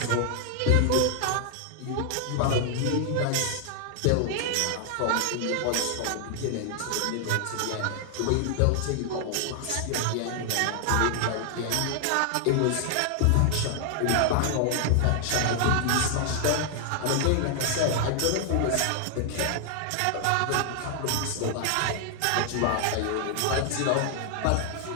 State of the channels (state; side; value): different; both; correlation 0.00